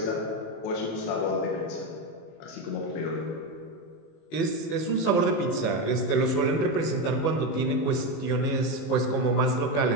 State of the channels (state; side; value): late; right; 19 ms